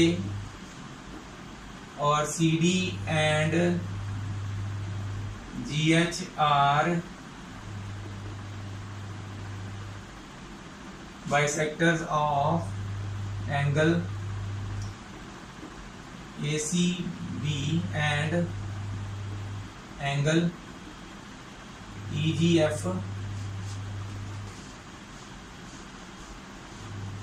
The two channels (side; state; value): both; identical; correlation 1.00